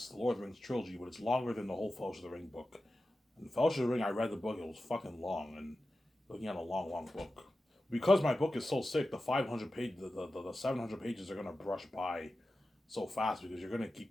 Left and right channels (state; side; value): normal; both; correlation 0.93